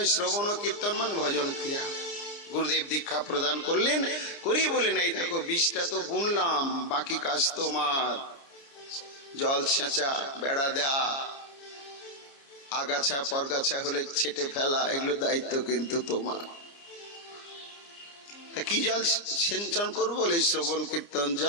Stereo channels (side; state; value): right; late; 29 ms